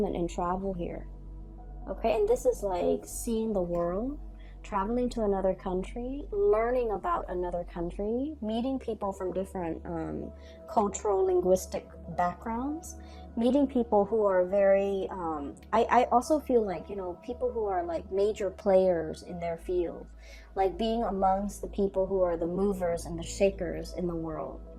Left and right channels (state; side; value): identical; both; correlation 1.00